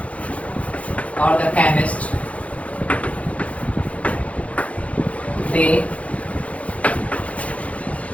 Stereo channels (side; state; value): right; late; 0.065 ms